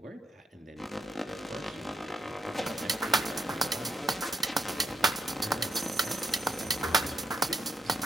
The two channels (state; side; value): normal; both; correlation 0.78